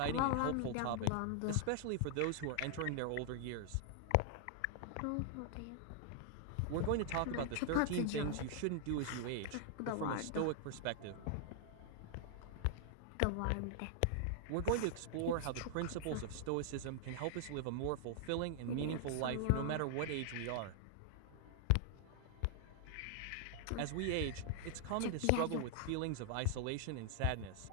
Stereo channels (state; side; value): different; both; correlation 0.00